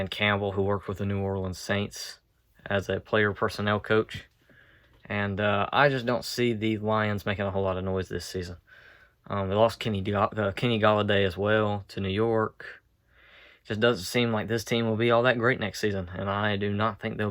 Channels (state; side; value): identical; both; correlation 1.00